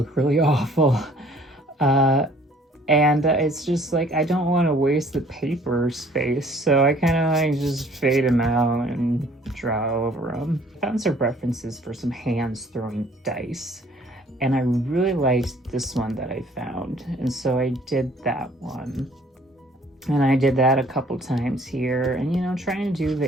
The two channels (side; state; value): both; normal; correlation 0.57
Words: really awful. And it's just like, I don't want to waste the paper space, so I kind of like just fade them out and draw over them. I found some references for some hands throwing dice, and I really liked this one that I found, and so I did that one. And I did that a couple times here, and trying to do